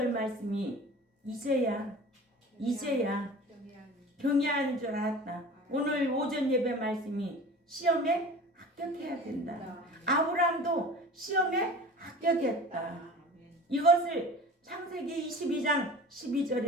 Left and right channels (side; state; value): both; normal; correlation 0.39